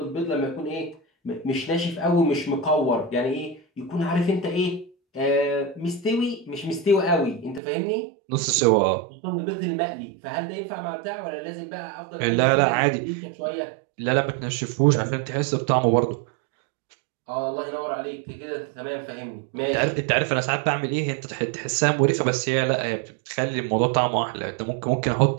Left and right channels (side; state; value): left; drops out; at 7.6 s